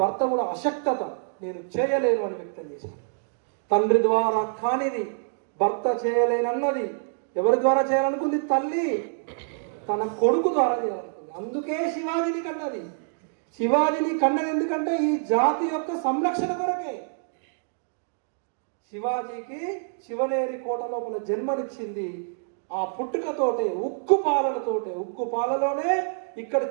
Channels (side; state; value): left; silent; digital silence